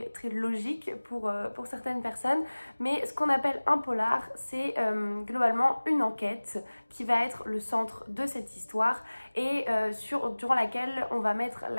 logique pour certaines personnes, mais ce qu'on appelle un polar c'est globalement une enquête qui va être le centre de cette histoire et durant laquelle on va mettre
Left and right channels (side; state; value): both; inverted; correlation -1.00